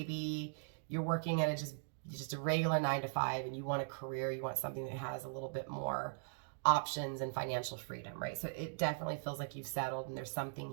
you're working at just a regular 9-to-5, and you want a career, you want something that has a little bit more options and financial freedom, right? So it definitely feels like you've settled, and there's something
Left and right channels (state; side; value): silent; left; digital silence